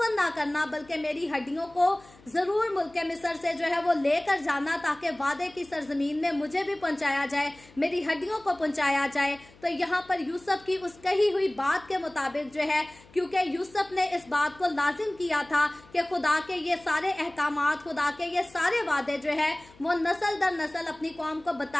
ना करना, बल्कि मेरी हड्डियों को जरूर मुल्क मिस्र से जो है वो लेकर जाना, ताकि वादे की सरजमीन में मुझे भी पहुंचाया जाए, मेरी हड्डियों को पहुंचाया जाए। तो यहाँ पर यूसुफ की उस कही हुई बात के मुताबिक जो है, क्योंकि यूसुफ ने इस बात को लाजिम किया था कि खुदा के ये सारे अहकामात, खुदा के ये सारे वादे जो है वो नस्ल दर नस्ल अपनी कौम को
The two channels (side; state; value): left; noise; hum, 26 dB below the sound